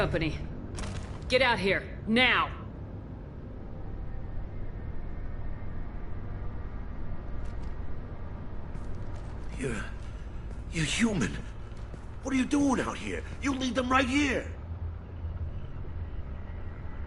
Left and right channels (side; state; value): both; identical; correlation 1.00